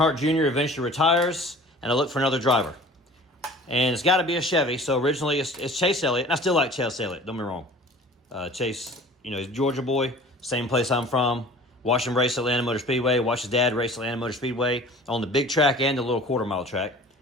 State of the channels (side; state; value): both; normal; correlation 0.45